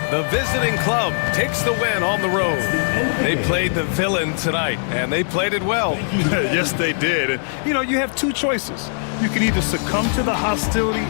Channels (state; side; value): silent; right; digital silence